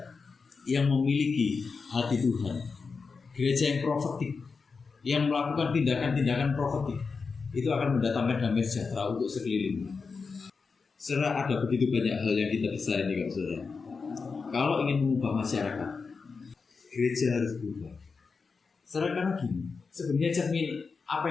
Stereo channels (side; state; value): right; quieter; 4.9 dB